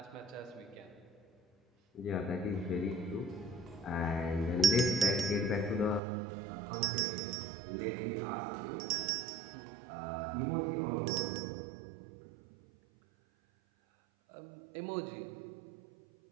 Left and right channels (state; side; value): drops out; left; at 6.0 s